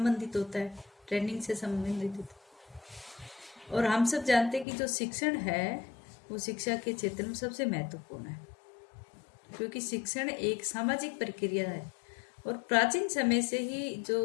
होता है, ट्रेनिंग से संबंधित होता है। और हम सब जानते हैं कि जो शिक्षण है वो शिक्षा के क्षेत्र में सबसे महत्वपूर्ण है, क्योंकि शिक्षण एक सामाजिक प्रक्रिया है और प्राचीन समय से ही जो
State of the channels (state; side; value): drops out; right; at 4.7 s